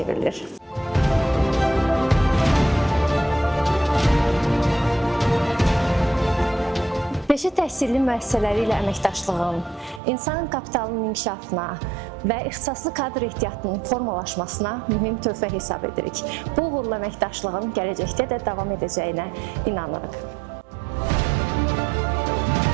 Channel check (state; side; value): drops out; left; at 10.0 s